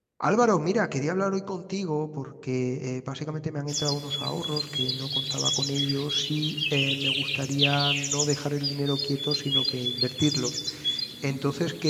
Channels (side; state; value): both; identical; correlation 1.00